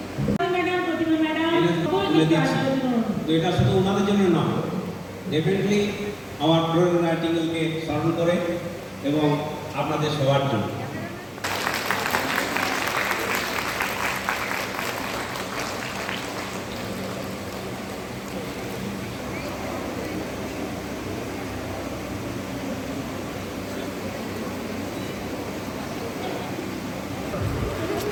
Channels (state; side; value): identical; both; correlation 1.00